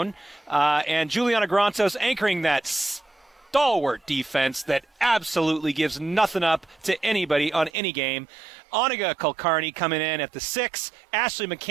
and Juliana Grantos anchoring that stalwart defense that absolutely gives nothing up to anybody on any game. Oniga Kulkarni coming in at the 6, Ashley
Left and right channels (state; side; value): drops out; left; at 7.7 s